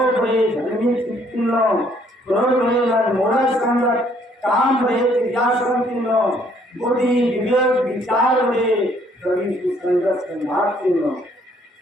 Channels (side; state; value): both; normal; correlation 0.64